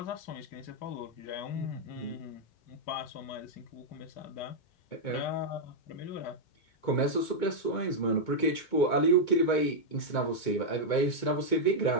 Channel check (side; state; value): right; late; 2.2 ms